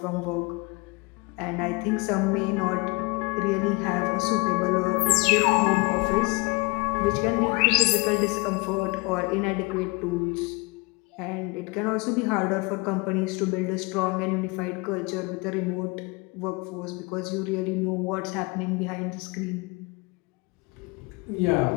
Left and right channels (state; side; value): quieter; right; 26.5 dB